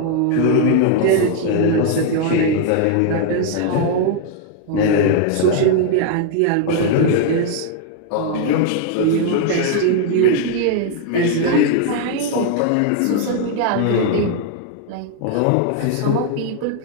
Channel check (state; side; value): different; both; correlation 0.00